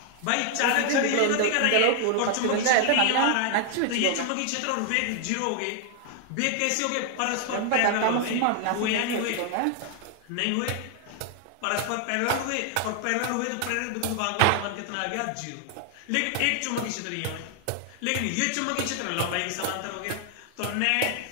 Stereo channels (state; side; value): different; both; correlation 0.00